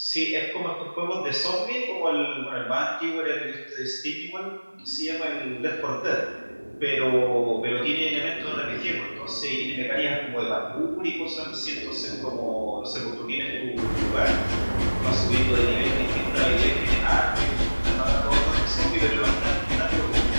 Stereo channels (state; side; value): inverted; both; correlation -1.00